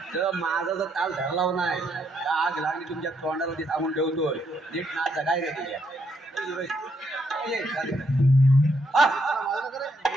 तर माझा जर ताल धरला नाही आग लागली तुमच्या तोंडावरती थांबून ठेवतोय नीट नाचा काय रे तुझ्या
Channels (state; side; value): normal; both; correlation 0.75